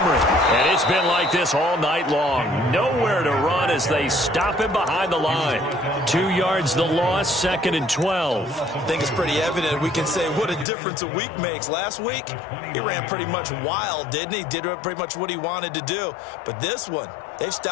And it's been like this all night long. Nowhere to run as they stop him behind the line. 2 yards the loss, 2nd and 12. I think it's pretty evident. We can say what a difference a week makes. Last week, he ran pretty much wild, didn't he? Did pretty much what he wanted to do. But this one, they've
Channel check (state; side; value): drops out; right; at 10.7 s